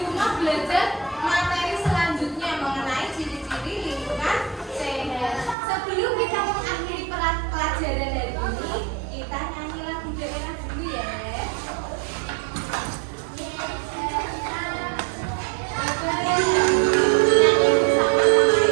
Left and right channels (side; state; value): left; drops out; at 5.6 s